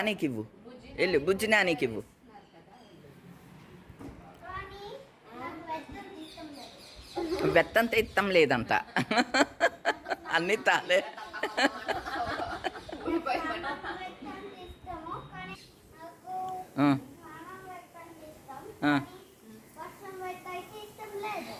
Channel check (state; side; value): identical; both; correlation 1.00